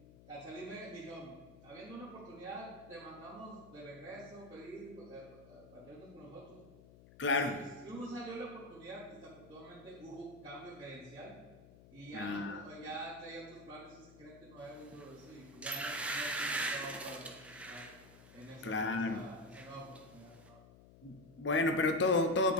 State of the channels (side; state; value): left; noise; hum, 20 dB below the sound